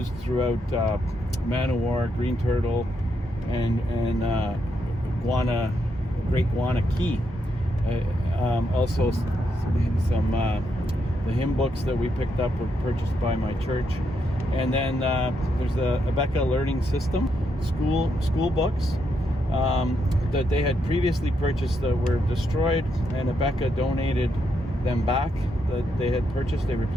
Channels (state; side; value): normal; both; correlation 0.79